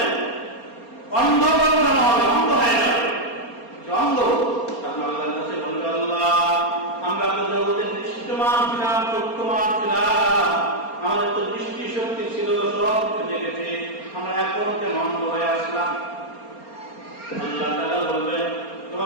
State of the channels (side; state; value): right; late; 4.3 ms